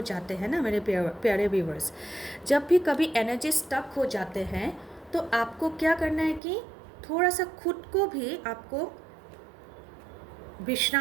जाते हैं ना मेरे प्यारे व्यूवर्स। जब भी कभी एनर्जी स्टक हो जाते हैं तो आपको क्या करना है कि थोड़ा सा खुद को भी आपको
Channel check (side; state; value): left; drops out; at 6.4 s